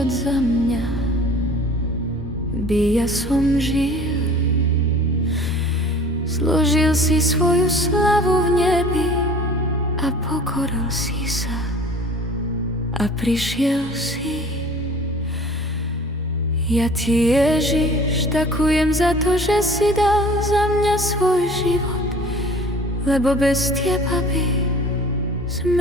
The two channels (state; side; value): normal; both; correlation 0.46